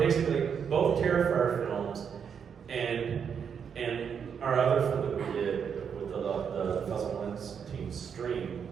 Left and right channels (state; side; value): quieter; left; 7.2 dB